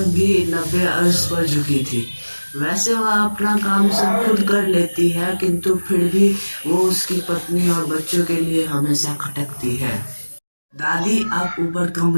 भी 90 अर्श पर झुकी थी। वैसे वह अपना काम सब खुद कर लेती है, किंतु फिर भी वो उसकी पत्नी और बच्चों के लिए हमेशा खटकती है। दादी, आप ऊपर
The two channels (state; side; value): inverted; both; correlation -1.00